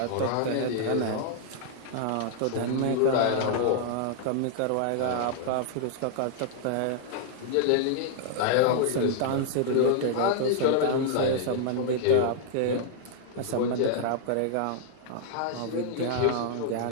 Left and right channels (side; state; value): both; different; correlation -0.01